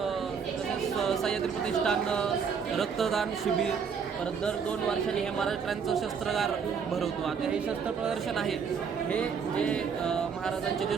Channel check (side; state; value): left; quieter; 6.4 dB